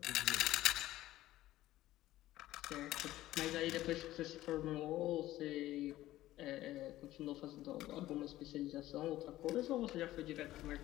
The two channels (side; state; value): right; quieter; 15.3 dB